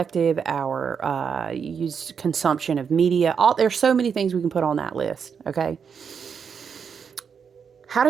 our use consumption of media, there's so many things we can put on that list, okay? How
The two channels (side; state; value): left; quieter; 6.7 dB